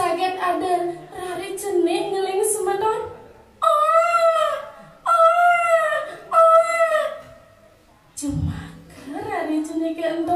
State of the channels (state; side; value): identical; both; correlation 1.00